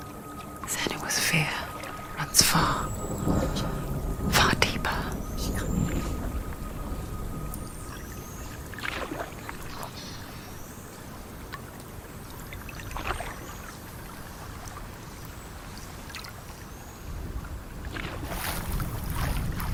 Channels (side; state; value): both; identical; correlation 1.00